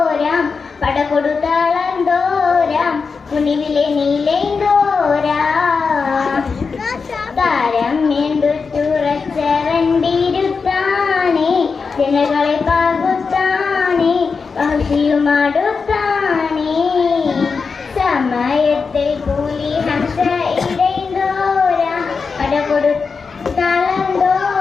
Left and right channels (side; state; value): right; quieter; 5.0 dB